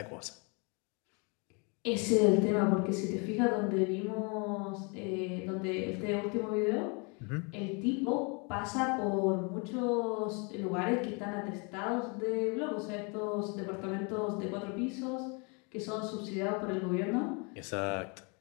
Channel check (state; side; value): quieter; right; 32.9 dB